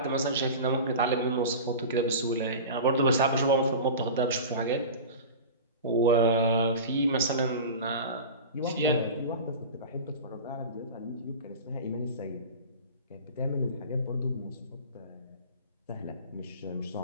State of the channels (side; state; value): both; inverted; correlation -0.33